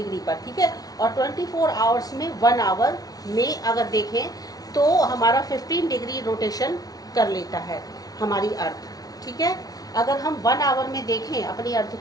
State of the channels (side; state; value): right; late; 0.18 ms